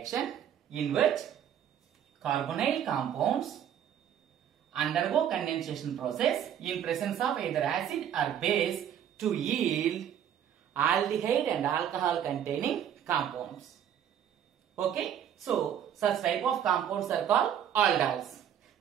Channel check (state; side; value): quieter; left; 9.6 dB